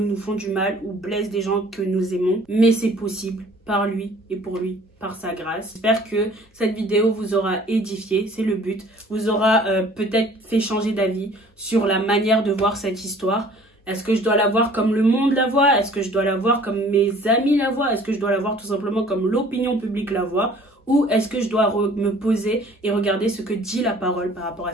nous font du mal ou blessent des gens que nous aimons. Mais c'est possible par lui et pour lui, par sa grâce. J'espère que cette vidéo vous aura édifié, c'est le but. Vous aura peut-être fait changer d'avis sur la manière de voir cette histoire. Est-ce que je dois la voir comme le monde la voit? Est-ce que je dois la voir comme mes amis la voient? Est-ce que je dois la voir tout simplement comme l'opinion publique la voit? Ou est-ce que je dois me poser et regarder ce que dit la parole par rapport à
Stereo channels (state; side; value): normal; both; correlation 0.52